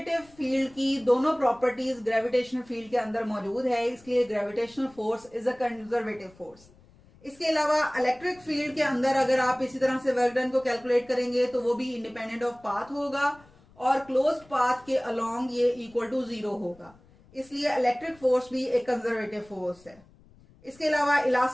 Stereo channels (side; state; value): left; noise; rumble, 27 dB below the sound